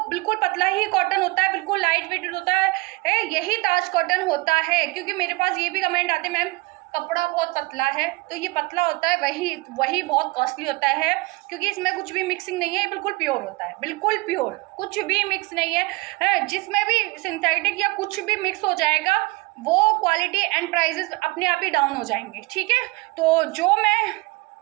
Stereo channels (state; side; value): quieter; left; 24.7 dB